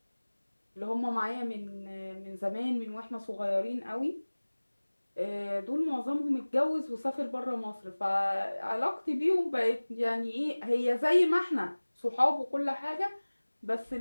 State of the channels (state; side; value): inverted; both; correlation -1.00